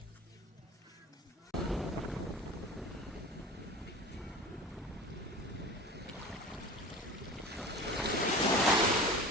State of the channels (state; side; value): normal; both; correlation 0.35